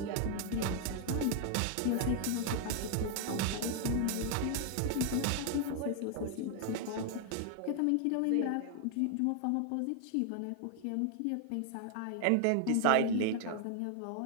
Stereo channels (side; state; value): both; different; correlation 0.00